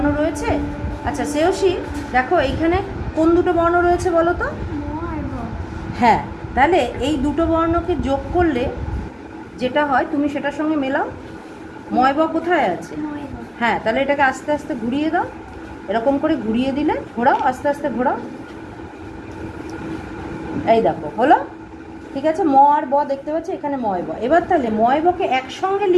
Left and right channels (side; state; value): both; identical; correlation 1.00